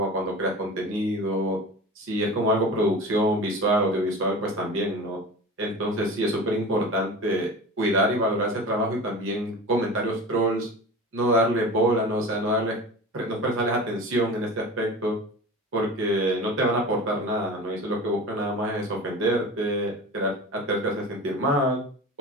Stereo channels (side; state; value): both; normal; correlation 0.34